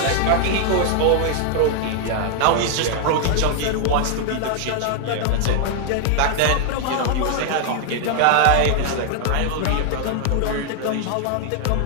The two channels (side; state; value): both; different; correlation 0.00